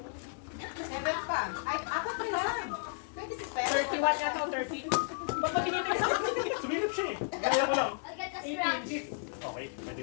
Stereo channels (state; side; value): silent; right; digital silence